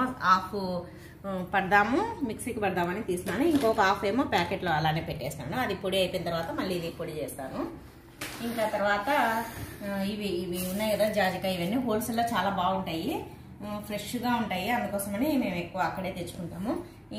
హాఫ్ పడదాము, మిక్సీకి పడదామని తీసినాను. ఇంకొక హాఫ్ ఏమో ప్యాకెట్లో అలానే పెట్టేసినాను. అది పొడి అయిపోయిన తర్వాత మళ్ళీ ఇది పొడి చేస్తాను. ఇంకా తర్వాత ఇవి ఉన్నాయి కదా జాజికాయ, ఇవన్నీ హోల్సేల్లో చాలా బాగుంటాయి, ఫ్రెష్గా ఉంటాయి, అందుకోసమని మేము ఎక్కువ అక్కడే తెచ్చుకుంటాము.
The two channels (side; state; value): both; identical; correlation 1.00